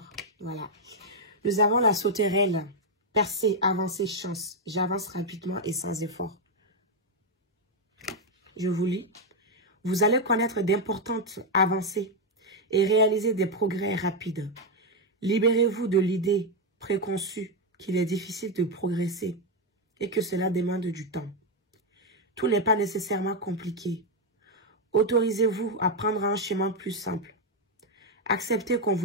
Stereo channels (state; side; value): normal; both; correlation 0.02